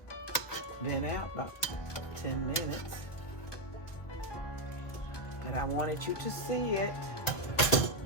been out about 10 minutes. But I wanted you to see it.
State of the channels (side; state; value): right; late; 1.4 ms